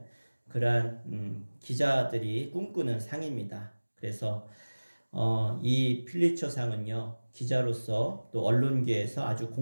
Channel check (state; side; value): inverted; both; correlation -1.00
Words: 그러한 기자들이 꿈꾸는 상입니다. 그래서 이 퓰리처 상은요, 기자로서 또 언론계에서 아주